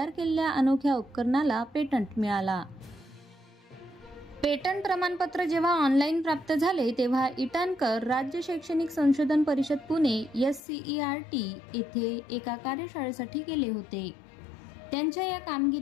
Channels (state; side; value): drops out; right; at 10.6 s